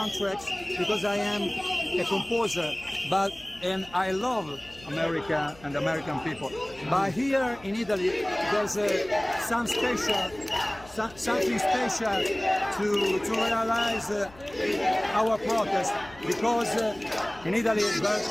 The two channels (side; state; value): left; noise; hum, 22 dB below the sound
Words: because I am a composer, and I love America and American people. But here in Italy, there's something special to realize our protest, because in Italy,